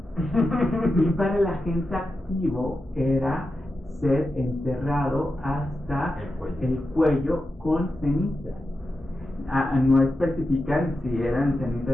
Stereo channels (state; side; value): normal; both; correlation 0.90